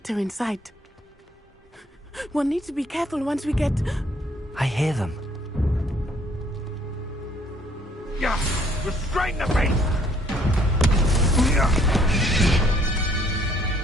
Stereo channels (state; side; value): normal; both; correlation 0.63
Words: inside. We'll need to be careful once we get... I hear them. Yeah! Restrain the beast!